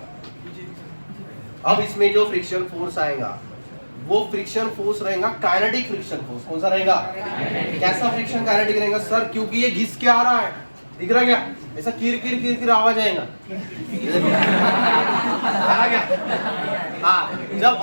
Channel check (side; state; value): both; inverted; correlation -1.00